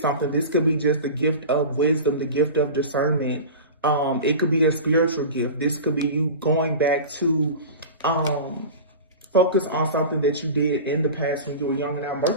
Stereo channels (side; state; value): both; inverted; correlation -0.32